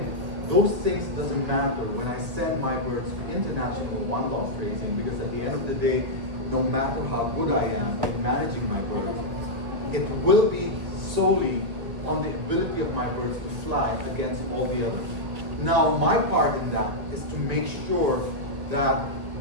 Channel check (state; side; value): late; left; 1.8 ms